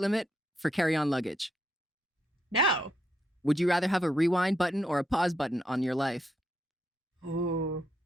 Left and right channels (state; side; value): normal; both; correlation 0.79